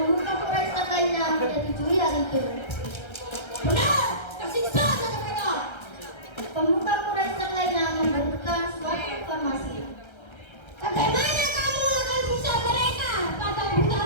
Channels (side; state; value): right; late; 1.3 ms